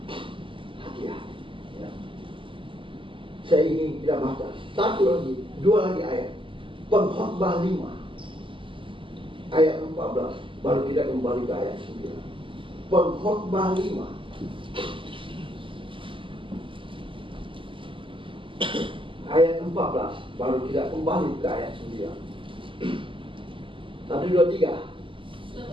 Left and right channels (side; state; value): left; late; 0.25 ms